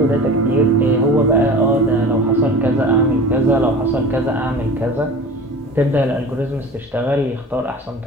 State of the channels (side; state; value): both; normal; correlation 0.37